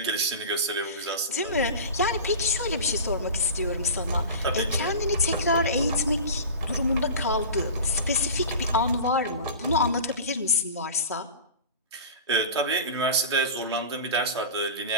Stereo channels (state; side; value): inverted; both; correlation -0.33